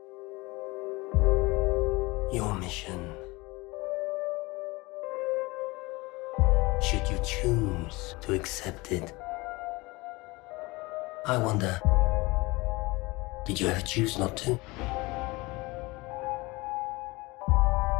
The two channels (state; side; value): quieter; right; 23.2 dB